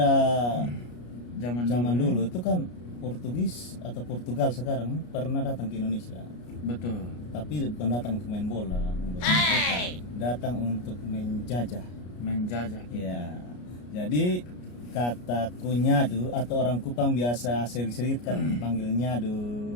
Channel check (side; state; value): right; late; 33 ms